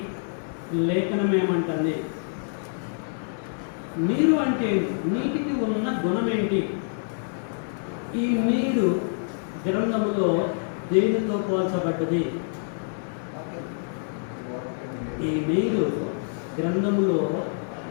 లేఖనం ఏమంటుంది? నీరు అంటే నీటికి ఉన్న గుణం ఏంటి? ఈ నీరు గ్రంథములో దేనితో పోల్చబడ్డది? ఈ నీరు గ్రంథములో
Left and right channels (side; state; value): right; silent; digital silence